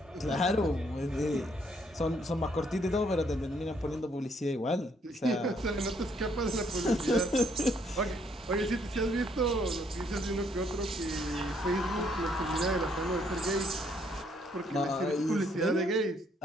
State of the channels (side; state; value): both; normal; correlation 0.69